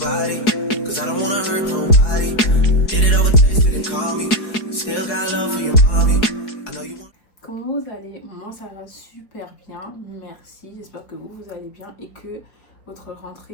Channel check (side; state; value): right; late; 4.7 ms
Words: Comment vous allez? Moi ça va super bien, merci. J'espère que vous allez bien et que votre